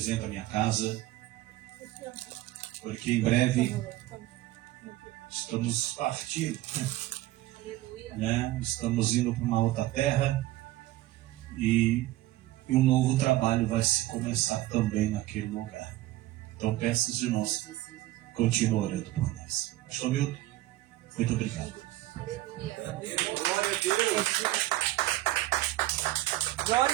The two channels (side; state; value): left; quieter; 16.3 dB